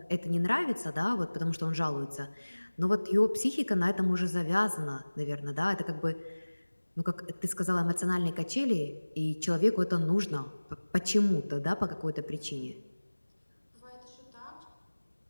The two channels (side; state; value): both; inverted; correlation -1.00